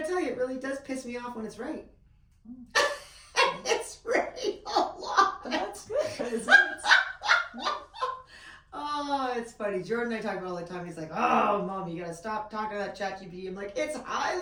tell you, it really does piss me off when it's right. It's right a lot. But that's good. Isn't it? Oh, it's funny. Jordan and I talk about it all the time. He's like, oh, Mom, you gotta stop talking to that ChatGPT. I'm like, it's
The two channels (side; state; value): both; identical; correlation 1.00